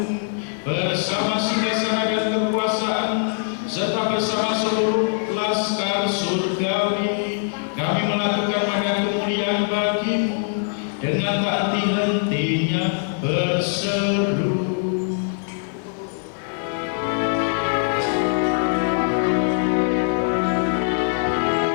bersama singgasana dan kekuasaan, serta bersama seluruh laskar surgawi, kami melakukan pada kemuliaan bagi-Mu dengan tak henti-hentinya berseru.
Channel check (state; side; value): silent; right; digital silence